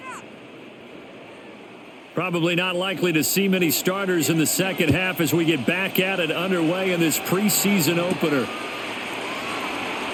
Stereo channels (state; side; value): identical; both; correlation 1.00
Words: Probably not likely to see many starters in the second half as we get back at it underway in this preseason opener.